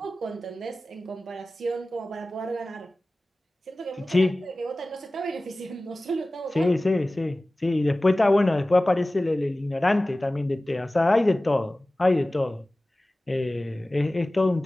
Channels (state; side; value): normal; both; correlation 0.97